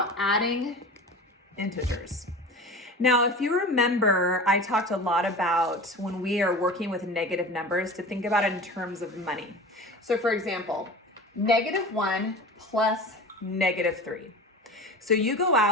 adding integers. Now, if you remember, I talked a lot about when we are working with negative numbers to think about it in terms of money. So for example, -1 plus -3. So you go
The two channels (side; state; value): both; normal; correlation 0.34